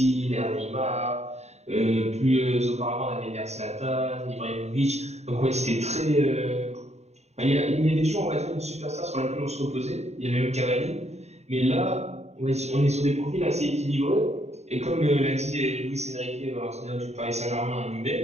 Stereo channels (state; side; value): late; left; 0.32 ms